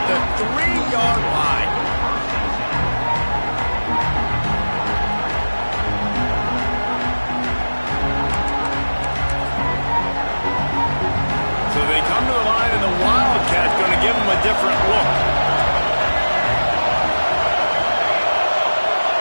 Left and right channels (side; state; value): both; inverted; correlation -1.00